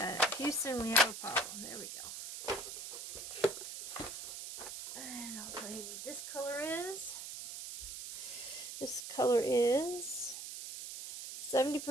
Houston, we have a problem. There we go. And I'll tell you what this color is. This color is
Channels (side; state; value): right; noise; hiss, 8 dB below the sound